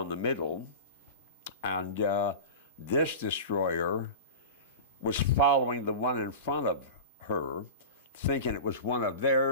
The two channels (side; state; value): both; inverted; correlation -0.30